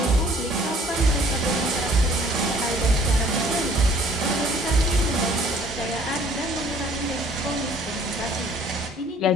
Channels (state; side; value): normal; both; correlation 0.56